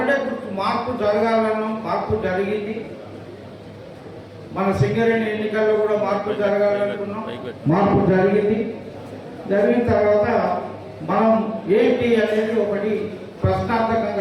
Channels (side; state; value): both; identical; correlation 1.00